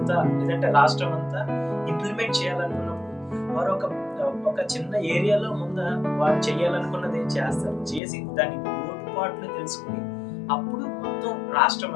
లేదంటే రాష్ట్రం అంతా ఇంప్లిమెంట్ చేయాలనుకున్నప్పుడు వారు ఒక చిన్న ఏరియాలో ముందు వారు చేయాలనుకున్నది చేస్తారు. చేసి దాని లోటుపాట్లు తెలుసుకుని అప్పుడు మొత్తం రాష్ట్రం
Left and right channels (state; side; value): drops out; right; at 8.0 s